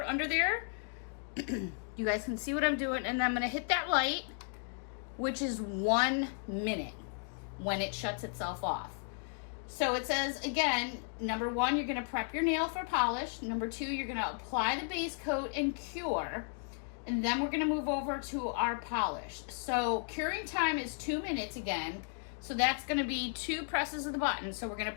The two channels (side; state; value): right; silent; 55 dB below the other